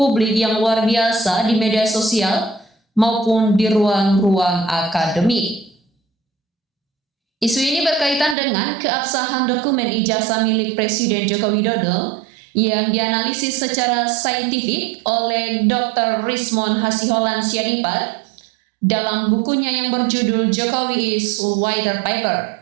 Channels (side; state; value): left; drops out; at 8.3 s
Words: yang luar biasa di media sosial maupun di ruang-ruang akademik. Isu ini berkaitan dengan keabsahan dokumen ijazah milik Presiden Joko Widodo yang dianalisis secara saintifik oleh Dr. Rismon Hasiholan Sianipar dalam bukunya yang berjudul Jokowi is White